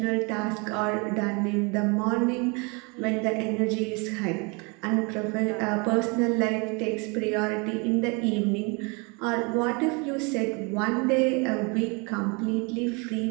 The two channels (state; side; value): quieter; left; 30.9 dB